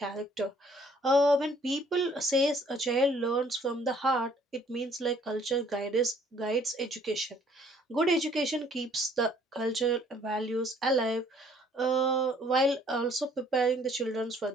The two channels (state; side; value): normal; both; correlation 0.60